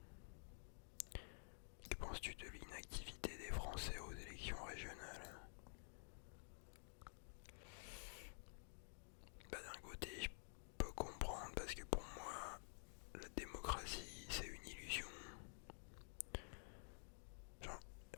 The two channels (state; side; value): silent; right; digital silence